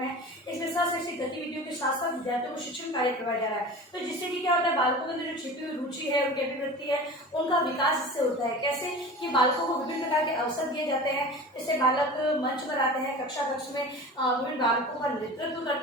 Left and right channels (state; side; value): normal; both; correlation 0.35